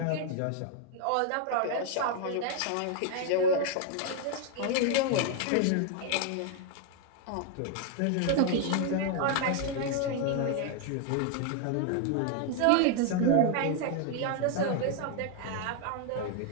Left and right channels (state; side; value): different; both; correlation 0.00